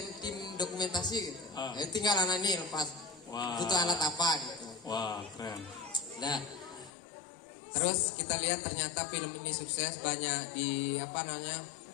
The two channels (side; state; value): right; drops out; at 6.9 s